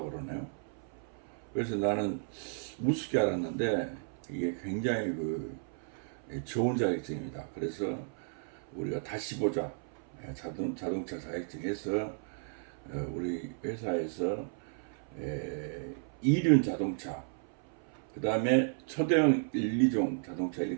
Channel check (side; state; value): left; silent; 55 dB below the other